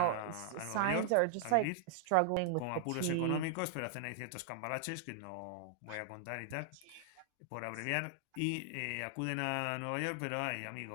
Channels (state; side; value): different; both; correlation -0.01